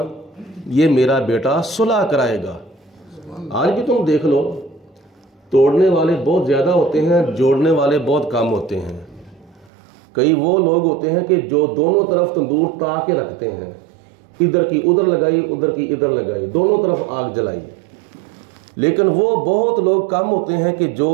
یہ میرا بیٹا صلح کرائے گا۔ آج بھی تم دیکھ لو، توڑنے والے بہت زیادہ ہوتے ہیں، جوڑنے والے بہت کم ہوتے ہیں۔ کئی وہ لوگ ہوتے ہیں کہ جو دونوں طرف تندور تا کے رکھتے ہیں، ادھر کی ادھر لگائی، ادھر کی ادھر لگائی، دونوں طرف آگ جلائی۔ لیکن وہ بہت لوگ کم ہوتے ہیں کہ جو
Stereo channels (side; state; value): left; drops out; at 9.7 s